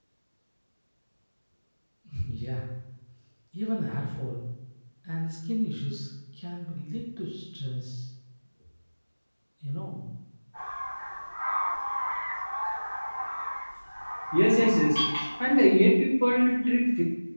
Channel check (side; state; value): both; inverted; correlation -1.00